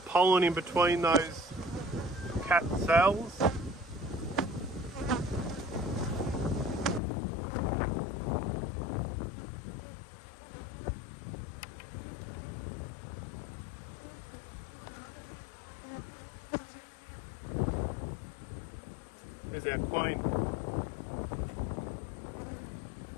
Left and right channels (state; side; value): drops out; right; at 7.0 s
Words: pollen in between those cat cells. There's our queen.